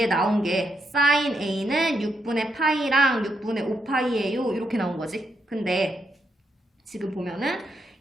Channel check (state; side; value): normal; both; correlation 0.80